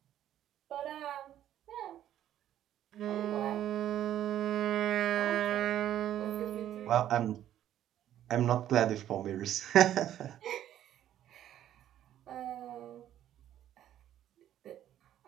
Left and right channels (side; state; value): left; quieter; 11.6 dB